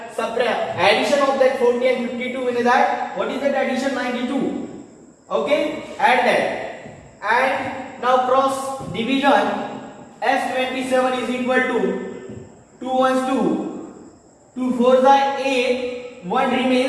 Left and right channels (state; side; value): identical; both; correlation 1.00